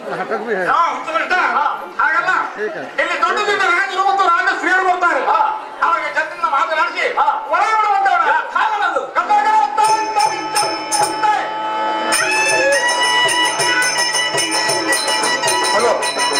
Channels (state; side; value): identical; both; correlation 1.00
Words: ಹಾಗಲ್ಲ ಇಲ್ಲಿ ದೊಡ್ಡದಿಂದ ರಾಜರು ಮತ್ತು ರಾಜ ಶ್ರೀಯರು ಬರ್ತಾರೆ ಅವಾಗ ಜನರಿಂದ ಮಾತನಾಡಿಸಿ ಒಳಗೆ ಬಿಡುವಂತವ್ರು ಹಾಗಲ್ಲದು ಹಲೋ